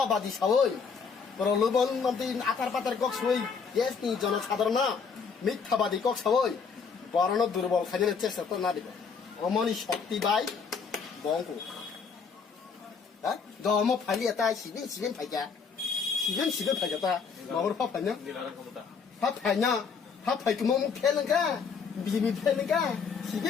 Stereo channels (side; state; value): right; quieter; 5.7 dB